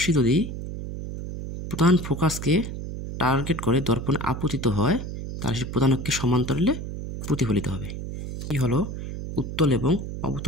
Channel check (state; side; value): noise; right; hum, 7 dB below the sound